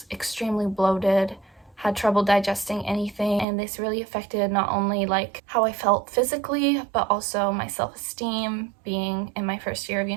extremely bloated, had trouble digesting anything, and this really affected not only how I felt physically, but also my self-esteem. Being in my first year of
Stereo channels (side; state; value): left; drops out; at 3.5 s